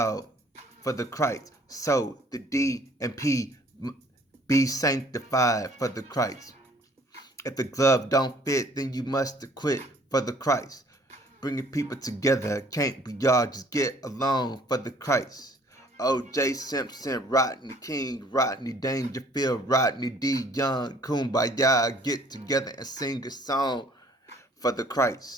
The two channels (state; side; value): normal; both; correlation 0.57